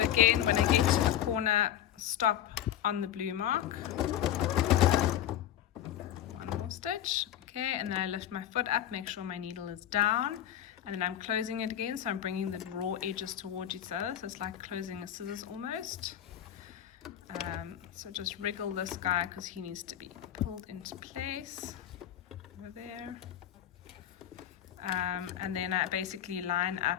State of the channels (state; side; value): quieter; right; 11.1 dB